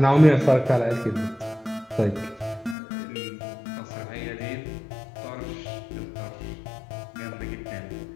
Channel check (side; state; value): right; drops out; at 2.8 s